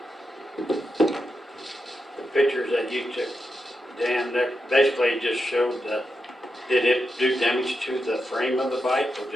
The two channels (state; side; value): normal; both; correlation 0.87